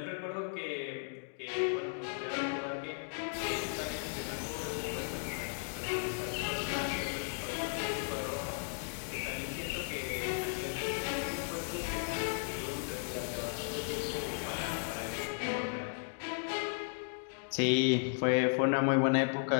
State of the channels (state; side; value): silent; right; digital silence